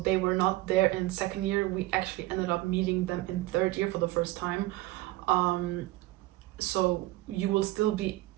were not there in second year. We actually ended up meeting them in third year for the first time. So you will still be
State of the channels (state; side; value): quieter; left; 18.3 dB